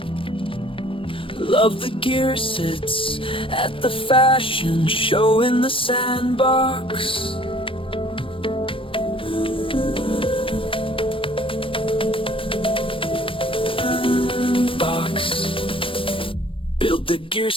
Love the gear sits at the fashion show in the sandbox. Box. Build the gear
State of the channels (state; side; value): late; right; 0.25 ms